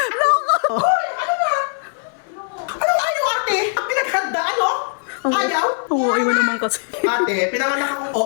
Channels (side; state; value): right; silent; digital silence